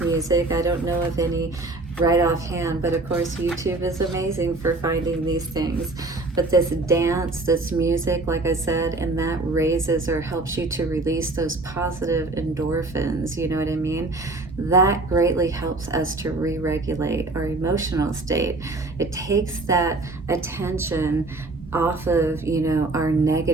I don't know of any right offhand, but of course YouTube is amazing for finding these things. But this dance, this music, like I said, and that raises or helps you to release those positive endorphins, you know what I mean? That greatly helps us to re-regulate our emotional state. It takes that attention off of, our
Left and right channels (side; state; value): left; quieter; 3.1 dB